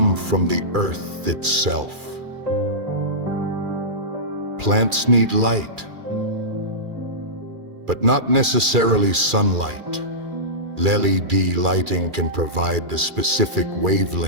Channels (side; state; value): left; late; 2.4 ms